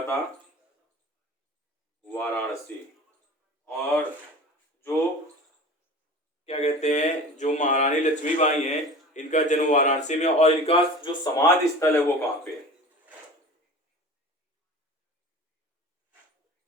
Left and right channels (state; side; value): normal; both; correlation 0.37